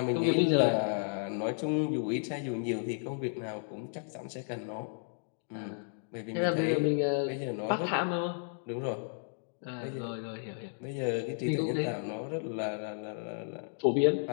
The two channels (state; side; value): silent; right; digital silence